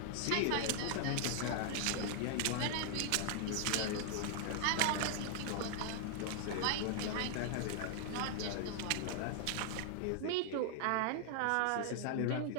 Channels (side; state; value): both; different; correlation 0.00